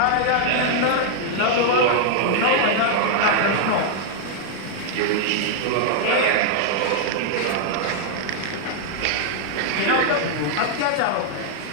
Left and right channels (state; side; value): different; both; correlation -0.01